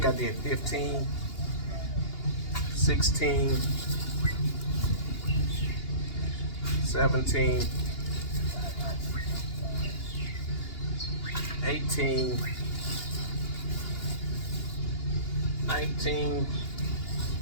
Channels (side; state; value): right; late; 2.8 ms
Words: I did 15, 16, 17, 18, 19,